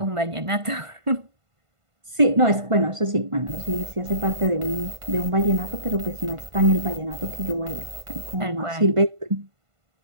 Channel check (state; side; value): late; left; 1.5 ms